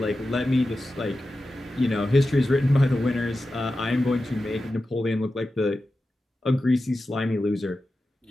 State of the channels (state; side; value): normal; both; correlation 0.92